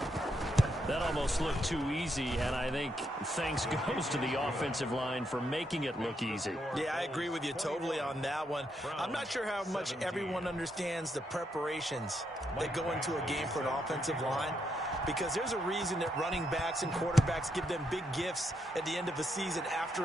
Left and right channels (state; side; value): normal; both; correlation 0.79